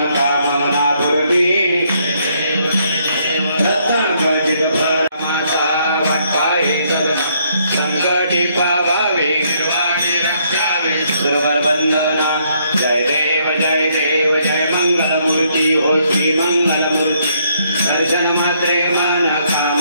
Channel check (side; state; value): both; inverted; correlation -0.70